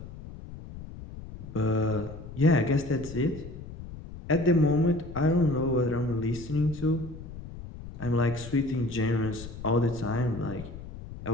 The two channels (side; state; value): left; noise; rumble, 13 dB below the sound